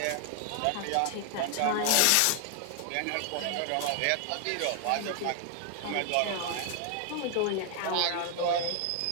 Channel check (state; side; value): different; both; correlation 0.00